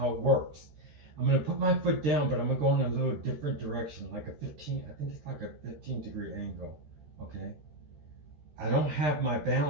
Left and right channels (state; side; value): late; left; 13 ms